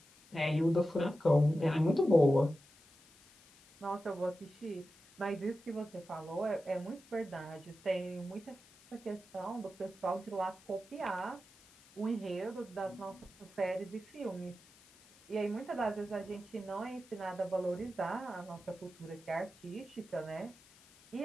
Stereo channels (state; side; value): noise; left; hiss, 25 dB below the sound